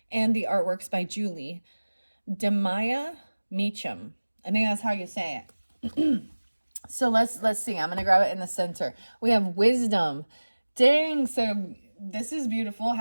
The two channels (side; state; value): both; inverted; correlation -1.00